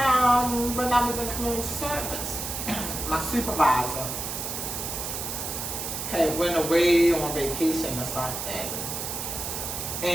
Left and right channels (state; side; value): noise; right; hiss, 5 dB below the sound